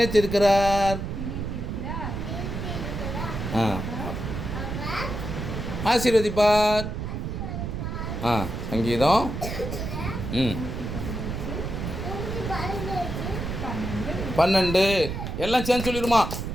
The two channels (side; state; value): right; noise; rumble, 5 dB below the sound